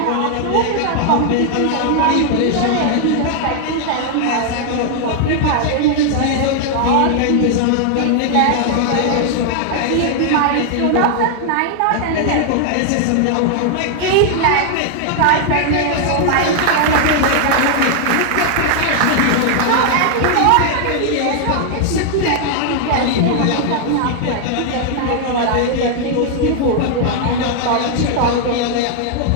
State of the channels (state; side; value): different; both; correlation 0.00